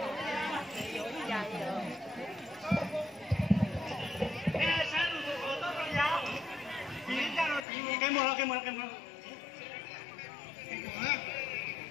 Cái mùa cái mùa cái mùa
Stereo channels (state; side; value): drops out; right; at 7.7 s